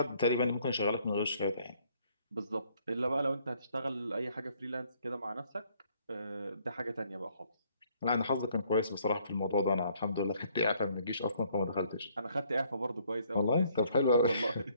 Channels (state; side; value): inverted; both; correlation -0.65